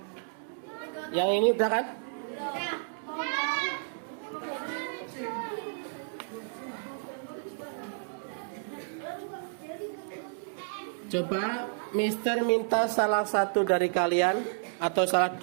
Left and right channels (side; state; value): left; silent; digital silence